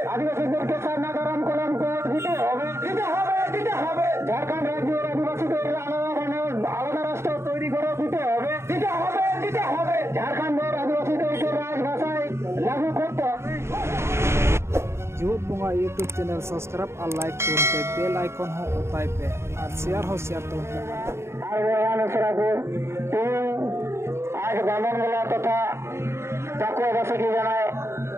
আদিবাসীদেরকে সারনা ধরম কলঙ্ক দিতে হবে দিতে হবে দিতে হবে ঝাড়খণ্ড রাজ্যের আদিবাসীদের আলাদা রাষ্ট্র তৈরি করে দিতে হবে দিতে হবে দিতে হবে ঝাড়খণ্ডের আদিবাসীদেরকে রাজভাষায় লাগু করতে হবে। जीवत बुंगा यूट्यूब चैनल सब्सक्राइब और लाइक करते बेल आइकन हो उताई पे और शेयर तो आज बामनगोला तथा चक्रवासी की जानाय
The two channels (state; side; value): late; left; 0.13 ms